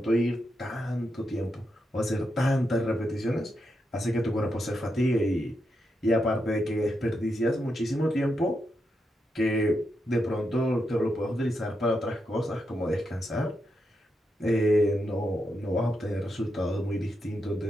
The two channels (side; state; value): both; normal; correlation 0.84